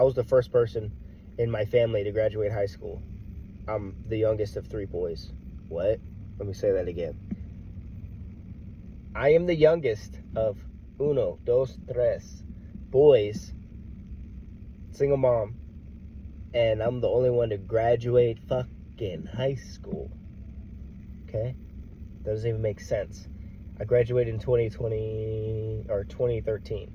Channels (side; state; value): both; identical; correlation 1.00